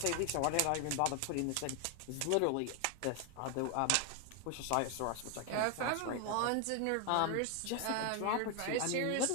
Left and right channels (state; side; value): different; both; correlation 0.01